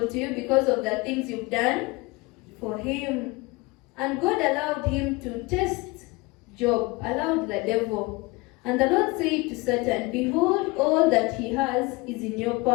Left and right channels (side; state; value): right; quieter; 23.9 dB